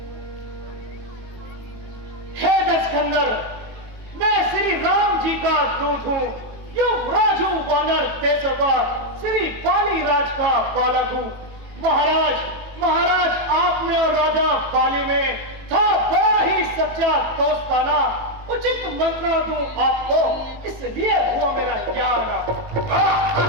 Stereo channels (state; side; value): late; left; 18 ms